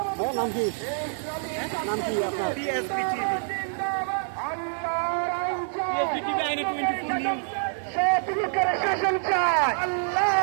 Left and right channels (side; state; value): left; silent; digital silence